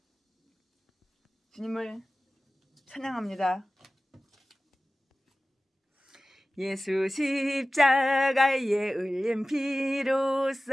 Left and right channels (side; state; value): both; normal; correlation 0.96